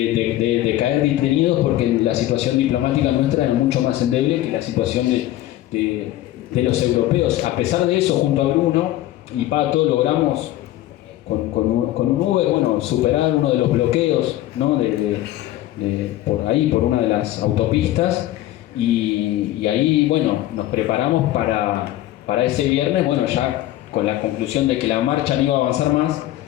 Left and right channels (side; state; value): right; quieter; 14.6 dB